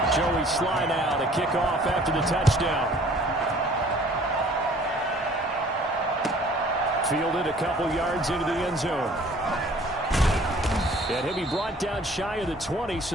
Joey Slye now to kick off after the touchdown. Fielded a couple yards into the end zone. And he'll be brought down shy of the 20,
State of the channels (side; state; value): both; normal; correlation 0.54